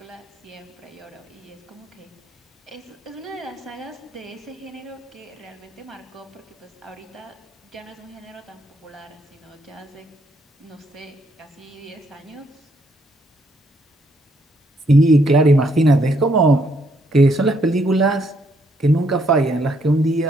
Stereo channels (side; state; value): both; normal; correlation 0.72